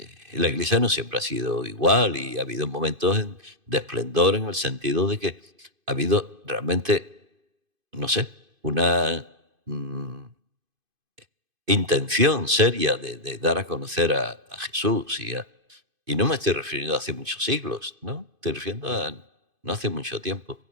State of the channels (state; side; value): late; left; 2.5 ms